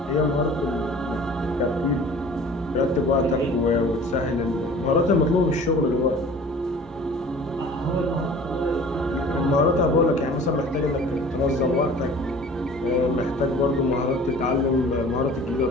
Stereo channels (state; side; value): normal; both; correlation 0.46